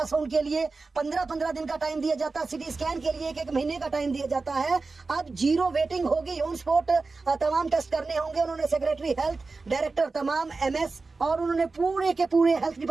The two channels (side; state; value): left; quieter; 3.9 dB